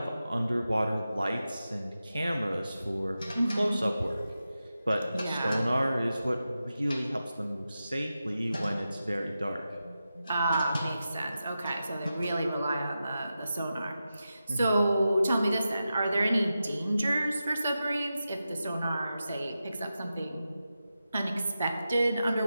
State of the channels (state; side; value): inverted; both; correlation -0.91